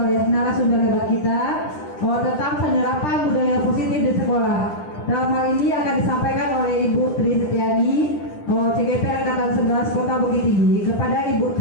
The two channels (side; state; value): right; late; 10 ms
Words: narasumber hebat kita tentang penerapan budaya positif di sekolah. Dalam hal ini akan disampaikan oleh Ibu Tri Setiani, CGP Angkatan 11 Kota Bukit Tinggi. Kepada Ibu